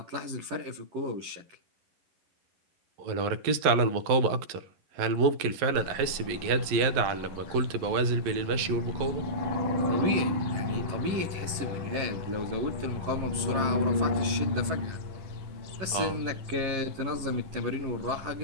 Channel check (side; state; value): left; late; 11 ms